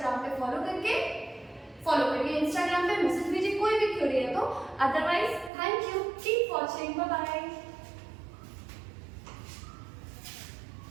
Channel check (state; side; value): drops out; left; at 5.5 s